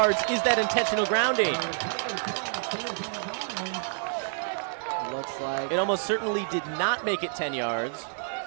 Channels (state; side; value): silent; left; digital silence